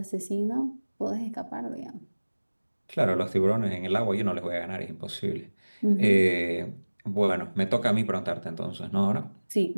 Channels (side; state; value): both; inverted; correlation -1.00